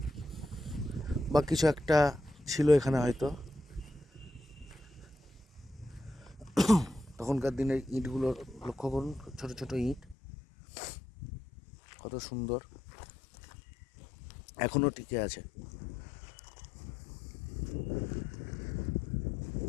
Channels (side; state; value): right; drops out; at 10.2 s